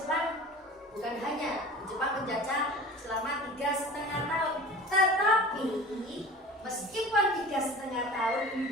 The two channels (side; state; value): both; normal; correlation 0.39